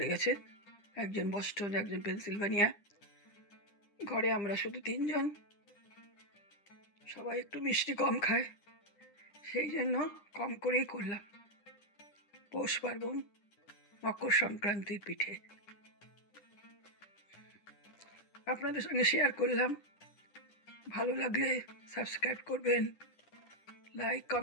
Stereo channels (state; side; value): late; right; 9.9 ms